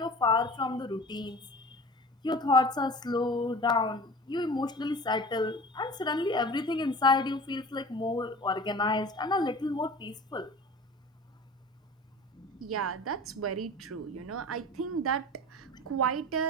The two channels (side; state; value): both; normal; correlation 0.39